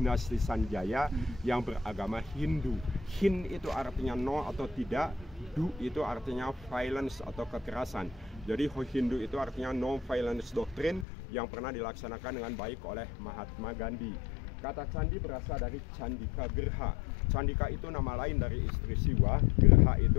Sanjaya yang beragama Hindu. Hin itu artinya no atau tidak, du itu artinya violence atau kekerasan. Jadi Hindu itu artinya no violence doctrine yang pernah dilaksanakan dengan baik oleh Mahatma Gandhi. Kata candi berasal dari Candika Gerha. Candika itu nama lain dari istri Siwa, Gerha itu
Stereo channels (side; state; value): right; drops out; at 11.1 s